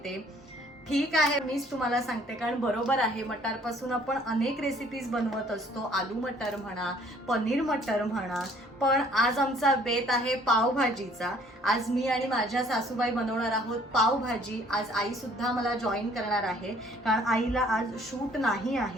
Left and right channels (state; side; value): normal; both; correlation 0.59